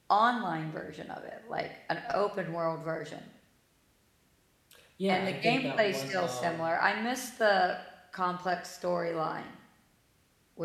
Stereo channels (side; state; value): both; identical; correlation 1.00